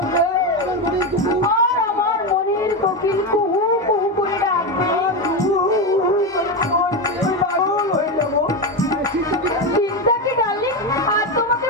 আর আমার মনের কোকিল কুহু কুহু করে ডাকবে। পাগল হয়ে যাবো। চিন্তা কি ডার্লিং, আর তোমাকে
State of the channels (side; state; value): both; normal; correlation 0.14